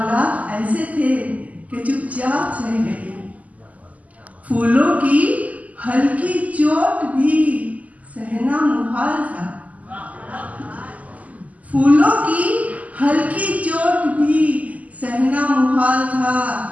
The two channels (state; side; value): late; left; 0.073 ms